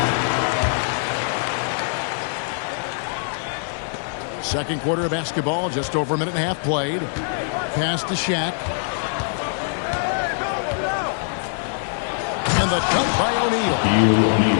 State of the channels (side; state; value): right; silent; digital silence